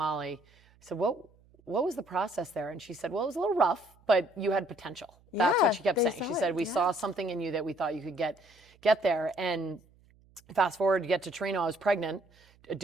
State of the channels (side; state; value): right; noise; hum, 30 dB below the sound